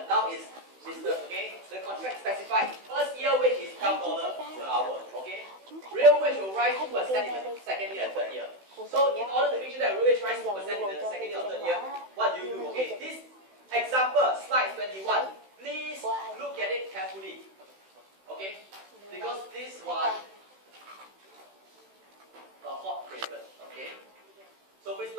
Now is business. Okay. The contract specified first year wage is $12 per hour. Okay. Real wage will rise 2% in the second year and third year. So in order to make sure that real wage rises 2% in the second year or third year, what do you do? Okay. This example, slide 21. Please look at it carefully. Okay? Because this one a hot favorite. Okay? So please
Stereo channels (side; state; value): left; late; 16 ms